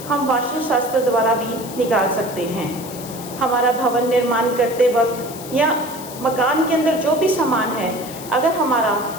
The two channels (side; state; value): left; noise; hiss, 14 dB below the sound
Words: हम वास्तुशास्त्र द्वारा भी निकाल सकते हैं। हमारा भवन निर्माण करते वक्त या मकान के अंदर जो भी सामान है, अगर हमारा